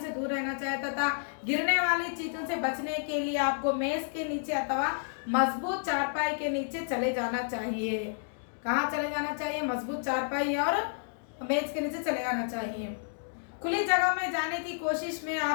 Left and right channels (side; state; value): right; silent; digital silence